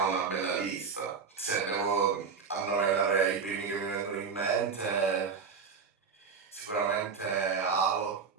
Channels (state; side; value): quieter; left; 5.7 dB